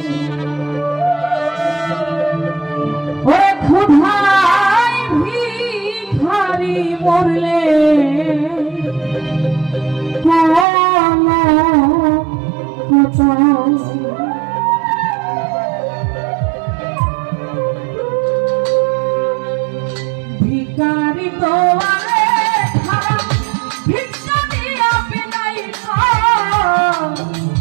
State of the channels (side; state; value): left; drops out; at 10.7 s